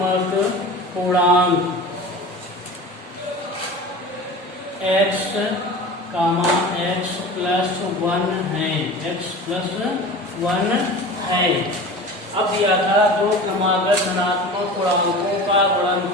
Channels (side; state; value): both; normal; correlation 0.35